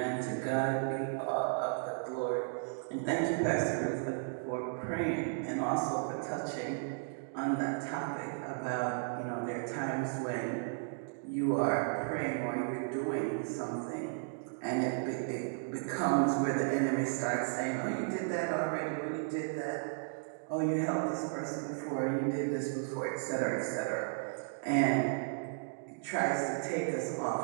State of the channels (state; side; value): silent; left; digital silence